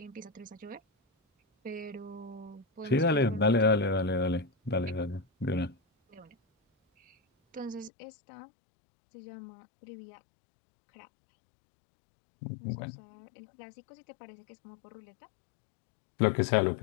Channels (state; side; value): drops out; right; at 7.9 s